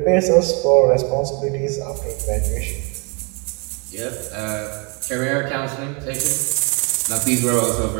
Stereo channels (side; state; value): left; quieter; 33.0 dB